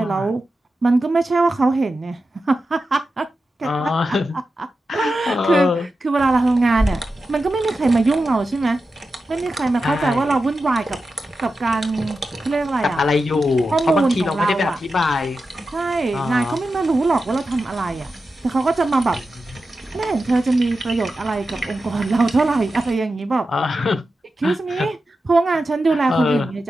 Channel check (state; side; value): normal; both; correlation 0.91